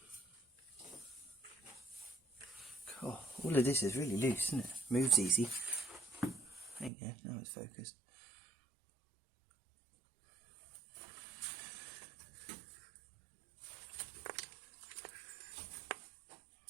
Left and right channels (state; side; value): drops out; left; at 6.9 s